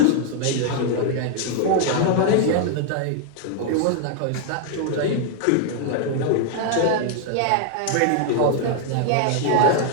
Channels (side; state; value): both; different; correlation 0.00